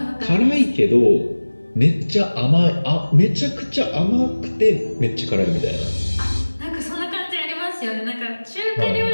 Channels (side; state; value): both; inverted; correlation -1.00